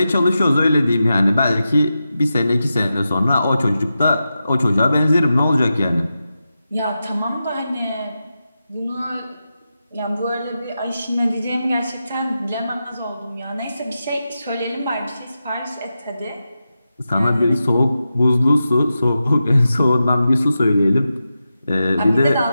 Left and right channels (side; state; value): both; inverted; correlation -0.90